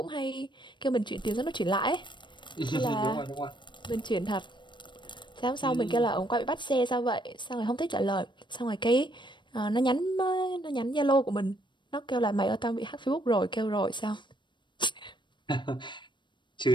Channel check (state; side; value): late; right; 0.22 ms